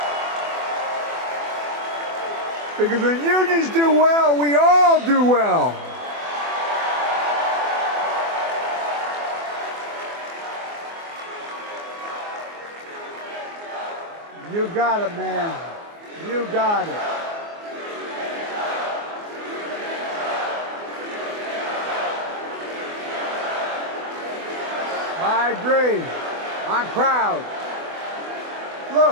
Because when unions do well, we all do well. You got it, man. You got it. I agree. I'm proud.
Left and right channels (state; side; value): late; left; 24 ms